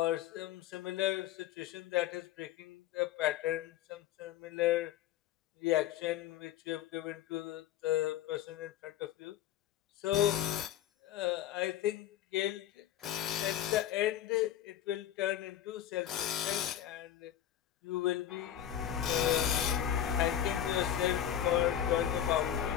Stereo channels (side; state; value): right; quieter; 11.1 dB